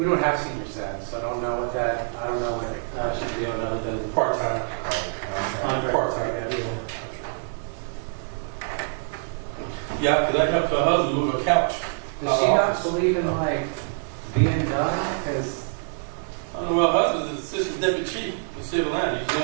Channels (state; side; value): silent; left; 56 dB below the other